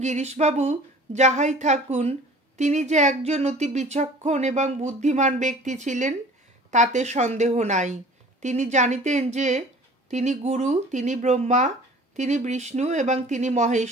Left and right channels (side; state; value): both; normal; correlation 0.46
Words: গিরিশবাবু যাহাই থাকুন, তিনি যে একজন অতি বিচক্ষণ এবং বুদ্ধিমান ব্যক্তি ছিলেন তাতে সন্দেহ নাই। তিনি জানিতেন যে তিনি গুরু, তিনি ব্রহ্মা, তিনি বিষ্ণু এবং তিনি